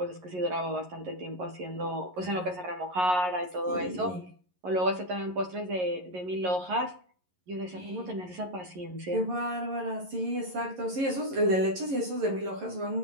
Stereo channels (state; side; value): late; left; 11 ms